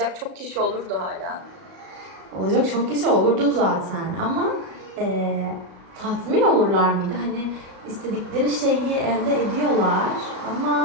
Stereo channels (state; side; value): late; left; 36 ms